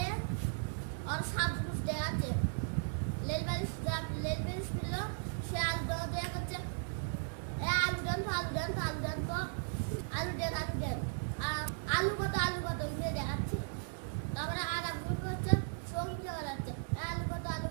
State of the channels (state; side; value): silent; left; digital silence